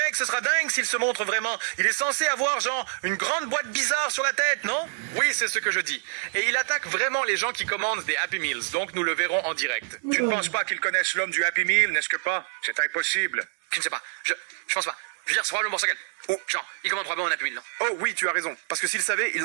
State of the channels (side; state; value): left; silent; 58 dB below the other